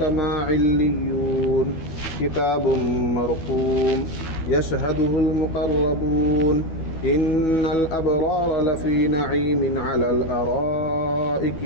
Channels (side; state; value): right; late; 12 ms